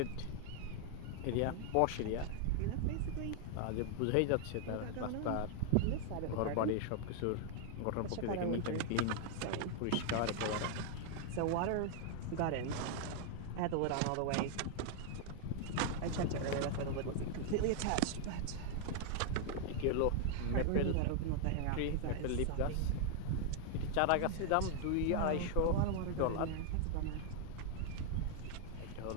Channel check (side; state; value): both; different; correlation 0.00